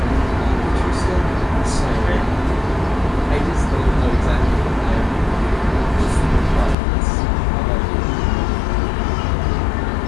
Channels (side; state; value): right; drops out; at 6.8 s